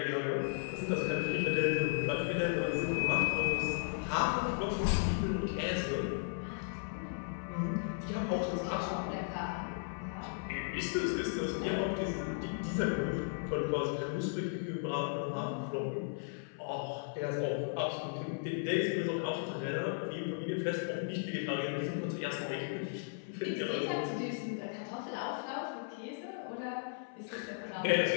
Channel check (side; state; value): right; silent; 54 dB below the other